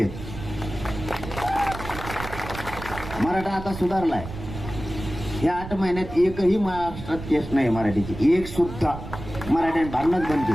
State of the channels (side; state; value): right; noise; rumble, 10 dB below the sound